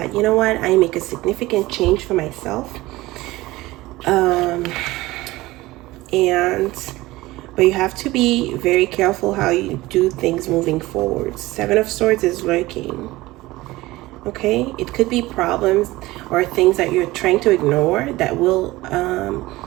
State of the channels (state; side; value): quieter; left; 18.9 dB